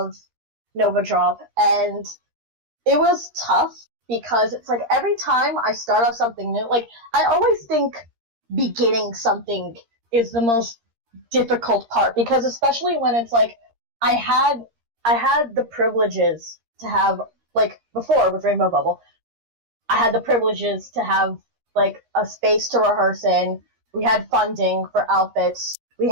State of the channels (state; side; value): late; left; 13 ms